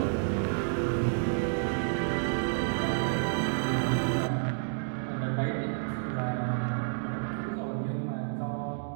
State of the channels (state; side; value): silent; left; digital silence